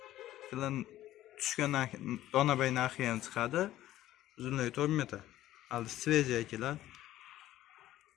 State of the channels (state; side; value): quieter; right; 14.1 dB